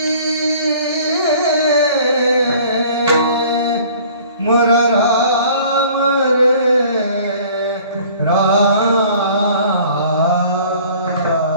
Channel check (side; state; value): both; inverted; correlation -0.51